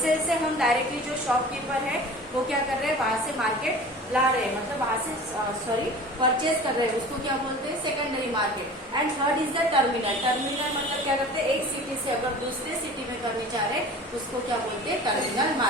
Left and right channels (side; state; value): both; normal; correlation 0.40